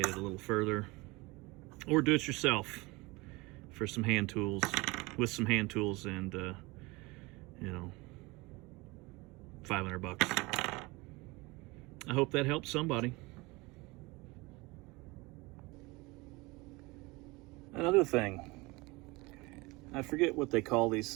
it a little further, or do it yourself for some hand tools, with some hand tools and you know, 500 bucks. I hope that helps somebody. Another thing, I forget what they call these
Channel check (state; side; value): quieter; left; 23.8 dB